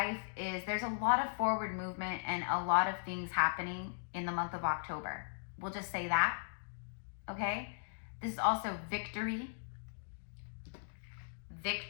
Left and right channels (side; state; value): right; silent; digital silence